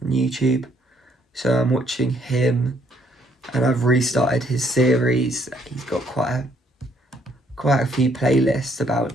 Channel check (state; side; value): normal; both; correlation 0.68